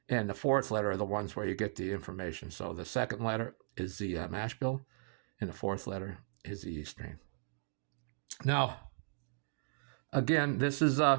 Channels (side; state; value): left; silent; digital silence